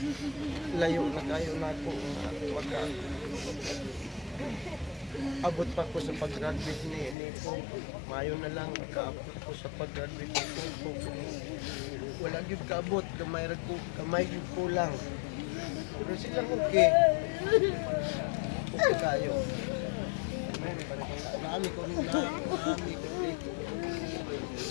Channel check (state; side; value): drops out; right; at 7.2 s